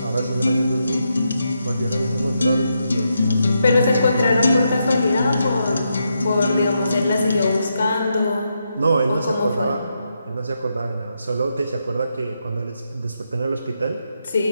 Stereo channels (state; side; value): inverted; both; correlation -0.83